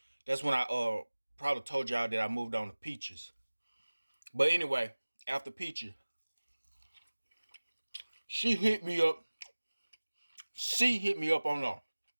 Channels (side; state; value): both; inverted; correlation -1.00